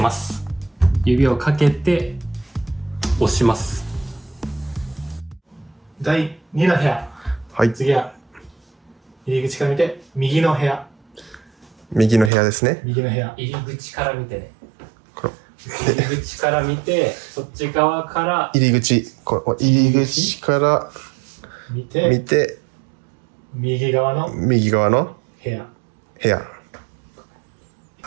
す。指をかけて押します。第2の部屋。はい。次は入り口から見て右の部屋。右の部屋ですね。右の部屋。入り口から見てね。この入り口から見て、そっち側から入り口、この入り口から見て見て、右側の右側の部屋。部屋。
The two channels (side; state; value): left; drops out; at 12.3 s